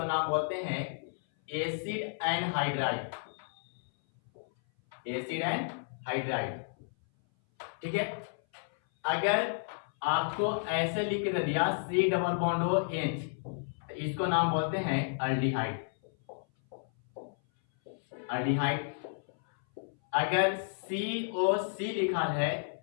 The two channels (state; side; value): silent; right; 56 dB below the other